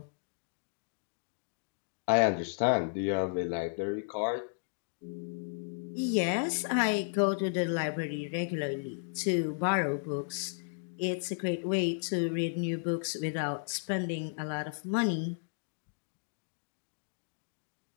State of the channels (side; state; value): right; silent; digital silence